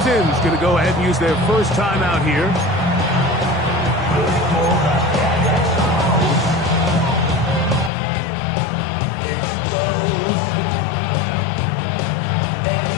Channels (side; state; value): right; drops out; at 7.9 s